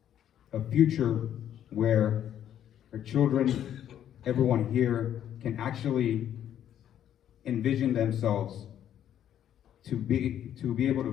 a future where our children, everyone here, can actually envision themselves to be able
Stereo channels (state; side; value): quieter; right; 10.4 dB